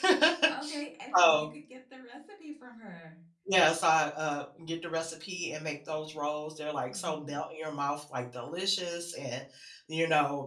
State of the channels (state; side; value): identical; both; correlation 1.00